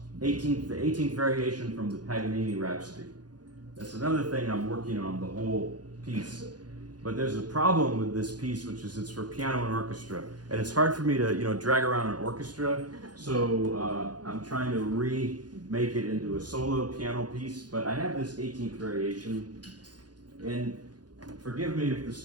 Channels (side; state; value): left; late; 0.69 ms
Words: the 18th variation from the Paganini Rhapsody. That's another thing I'm working on, the whole piece. But there's a problem with this piece, which is it's for piano and orchestra. And it's hard for me to, drag around an orchestra. So I'm trying to remake it into a solo piano piece. But I have this 18th variation. And forgive me if the